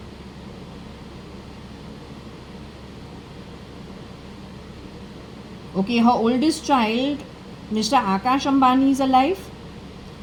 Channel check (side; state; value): both; identical; correlation 1.00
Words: Okay, her oldest child, Mr. Akash Ambani, is alive.